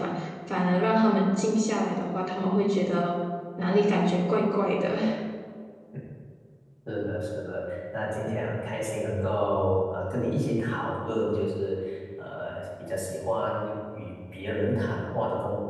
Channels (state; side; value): identical; both; correlation 1.00